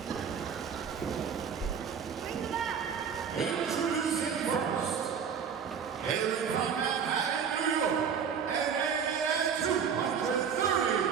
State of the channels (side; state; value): left; quieter; 7.0 dB